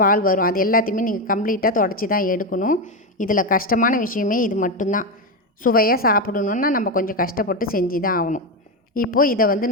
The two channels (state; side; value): normal; both; correlation 0.11